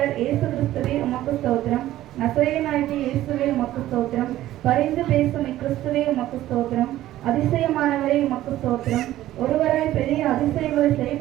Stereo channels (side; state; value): left; quieter; 14.3 dB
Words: இயேசு கிறிஸ்துவே உமக்கு ஸ்தோத்திரம். நசரேயனாகிய இயேசுவே உமக்கு ஸ்தோத்திரம். பரிந்து பேசும் இக்கிறிஸ்துவே உமக்கு ஸ்தோத்திரம். அதிசயமானவரே உமக்கு ஸ்தோத்திரம். ஒருவராய் பெரிய அதிசயங்களை